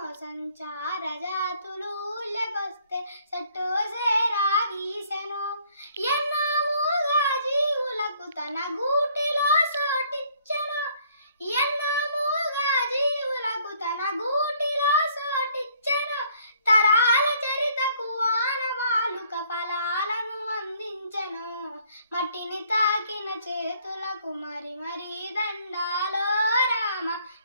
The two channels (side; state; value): both; inverted; correlation -0.62